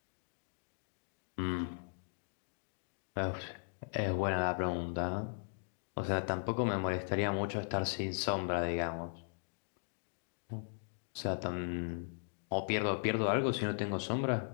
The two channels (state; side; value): silent; right; digital silence